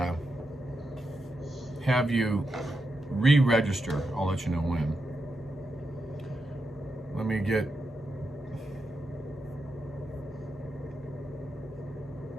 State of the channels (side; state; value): both; normal; correlation 0.86